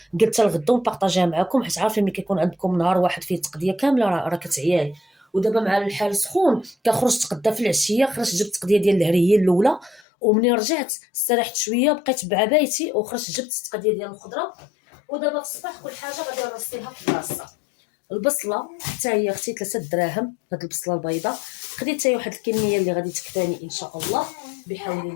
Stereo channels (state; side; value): drops out; right; at 10.0 s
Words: قلت الغدا ونبارطاجيها معكم، حيت عارفين ملي كيكون عندكم نهار واحد فيه تقديه كامله راه كتعياي. ودابا مع الحال سخون كنخرج تقدا في العشيه، خرجت جبت التقديه ديال الهري هي الاولى، ومنين رجعت استريحت شويه بقيت بعبايتي وخرجت جبت التقديه ديال الخضره. ودابا في الصباح كل حاجه غادي نرصيها في بلاصتها. البصله حتى هي اختي 3 دراهم، هاد البصله البيضاء خديت حتى واحد الكميه اللي غادي تكفاني ان شاء الله بحول